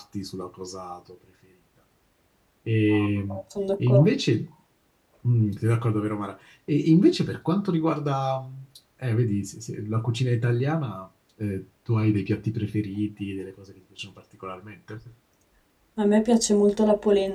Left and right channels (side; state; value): both; identical; correlation 1.00